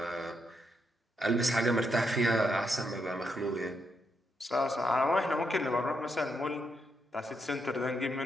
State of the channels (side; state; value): both; normal; correlation 0.80